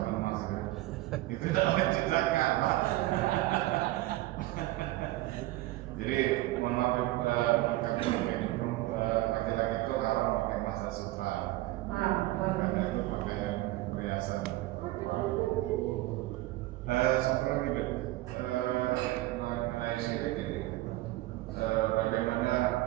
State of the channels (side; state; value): left; quieter; 17.9 dB